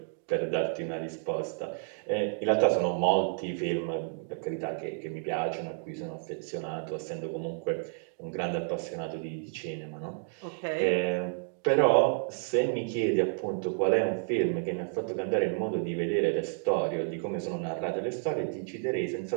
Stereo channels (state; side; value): silent; left; 57 dB below the other